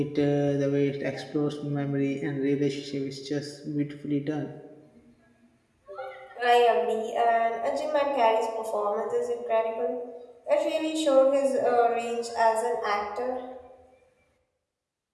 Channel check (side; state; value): both; identical; correlation 1.00